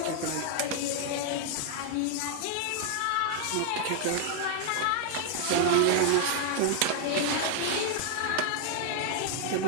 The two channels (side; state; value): both; different; correlation 0.00